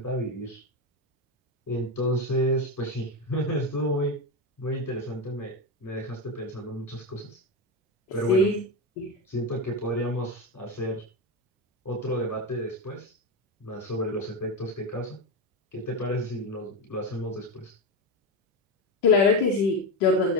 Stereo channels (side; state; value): both; normal; correlation 0.14